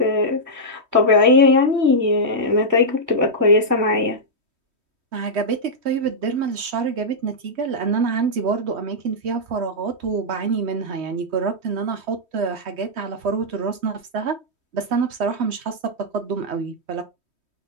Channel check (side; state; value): left; late; 3.1 ms